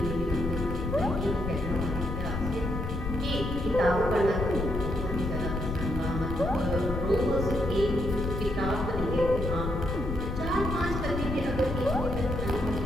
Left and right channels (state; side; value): noise; left; rumble, 4 dB below the sound